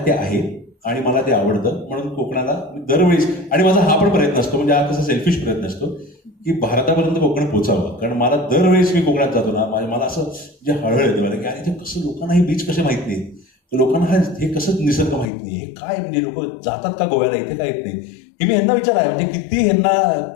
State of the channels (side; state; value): right; drops out; at 15.2 s